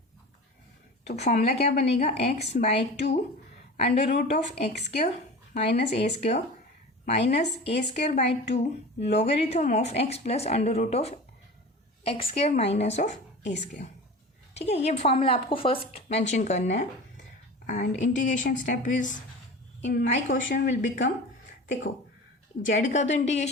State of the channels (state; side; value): normal; both; correlation 0.35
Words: तो फॉर्मूला क्या बनेगा, x/2 under root of X square minus A square minus A square by 2 logarithm of x plus under root of X square minus of A square. ठीक है, ये formula आपको first mention करना है. And integration step is in my question will become, देखो z का तो